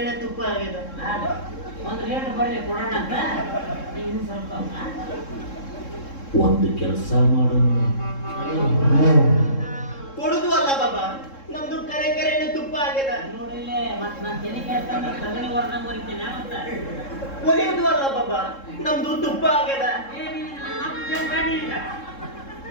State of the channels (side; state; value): right; late; 3.7 ms